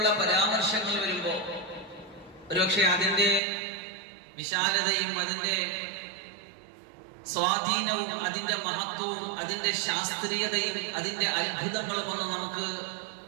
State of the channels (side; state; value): left; drops out; at 3.4 s